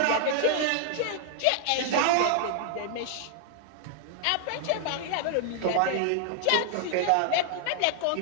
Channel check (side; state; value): both; different; correlation 0.00